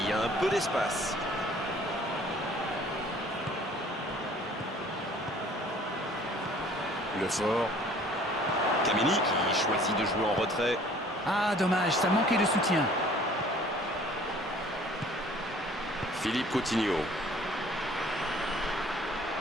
a un peu d'espace. Le fort. Kameni qui choisit de jouer en retrait. Ah, dommage, ça manquait de soutien. Philippe Coutinho.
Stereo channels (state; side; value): normal; both; correlation 0.53